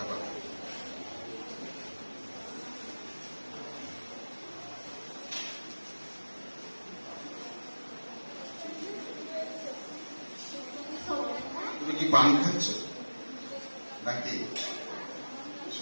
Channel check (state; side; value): inverted; both; correlation -1.00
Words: তুমি কি পান খাচ্ছ নাকি